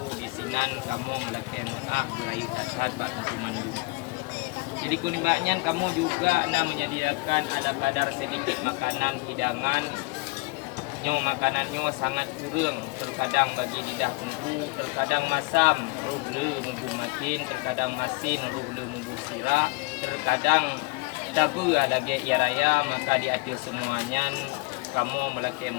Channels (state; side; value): quieter; right; 25.7 dB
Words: di sini kamu melakukan maaf berayu dasar bak tungku mandum. Jadi kuningnya kamu juga menyediakan ada kadar sedikit makanan hidangan makanannya sangat kurang, terkadang bagi lidah tungku, terkadang masam, ruhle mumbu makin, terkadang masin, ruhle mumbu sirah, terkadang Tapi lagi ya raya maka di atas semuanya kamu melakukan